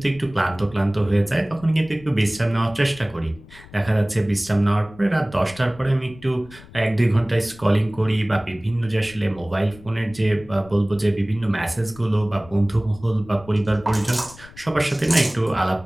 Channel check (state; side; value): noise; left; rumble, 21 dB below the sound